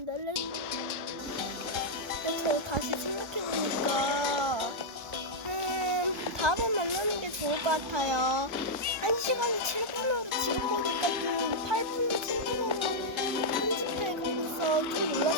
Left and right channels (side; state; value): left; late; 1.3 ms